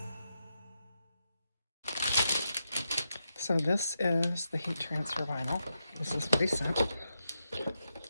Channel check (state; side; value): inverted; both; correlation -0.86